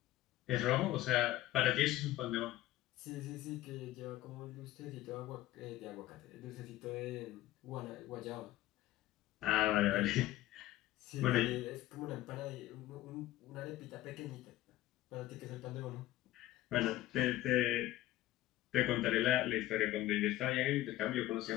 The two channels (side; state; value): right; quieter; 15.4 dB